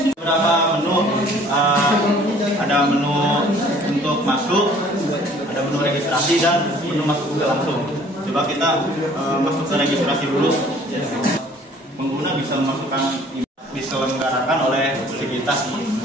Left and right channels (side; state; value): both; normal; correlation 0.54